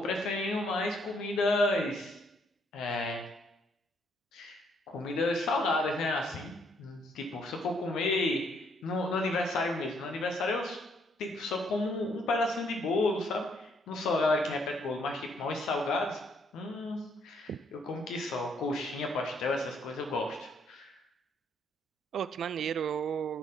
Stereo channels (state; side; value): normal; both; correlation 0.69